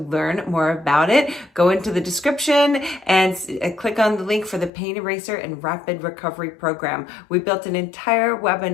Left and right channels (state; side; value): drops out; right; at 4.7 s